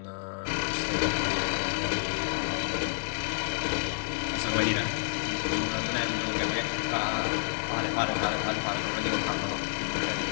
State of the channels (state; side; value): silent; right; 58 dB below the other